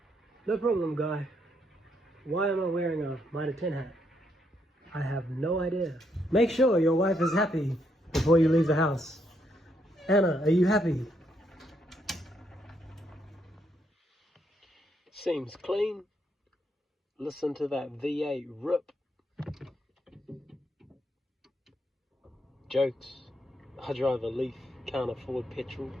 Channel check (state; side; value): normal; both; correlation 0.76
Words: No problem, Guy. Why am I wearing a Mitre 10 hat? I have no idea. Make sure your wife is happy before you leave the house. Anna, are you happy? Seems clean. Listen to that V8 rip. Jokes. I drive a Leaf, can't afford petrol.